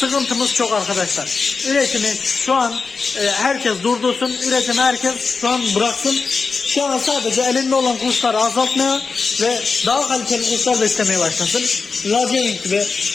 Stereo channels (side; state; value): right; quieter; 4.6 dB